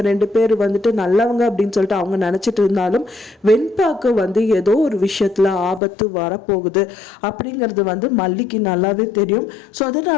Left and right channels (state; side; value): drops out; right; at 5.8 s